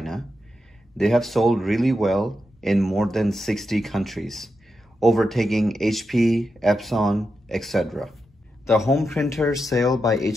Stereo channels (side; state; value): both; normal; correlation 0.87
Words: They have sold really well in more than 60 countries, overtaking HP, Epson, etc. The home printer sale by